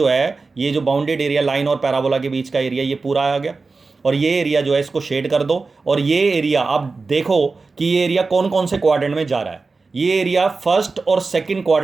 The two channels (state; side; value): quieter; left; 4.1 dB